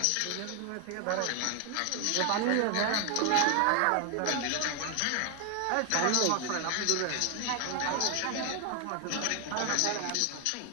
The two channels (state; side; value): different; both; correlation 0.00